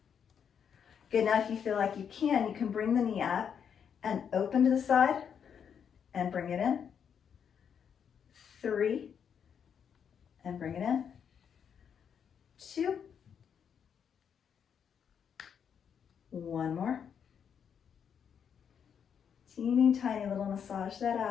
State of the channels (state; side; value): quieter; right; 7.6 dB